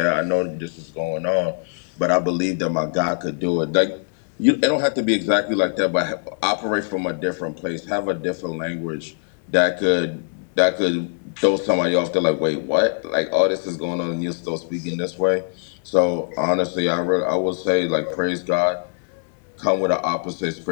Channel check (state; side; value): silent; right; 64 dB below the other